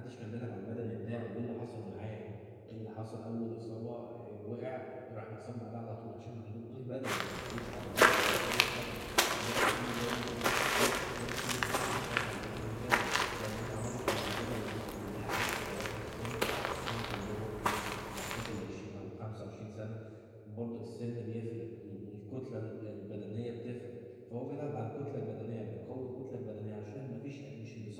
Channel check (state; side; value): identical; both; correlation 1.00